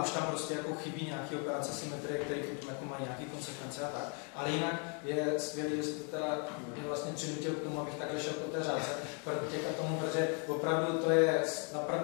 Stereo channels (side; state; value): right; quieter; 38.4 dB